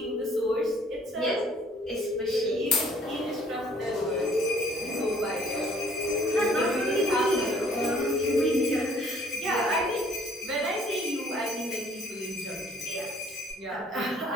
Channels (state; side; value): normal; both; correlation 0.59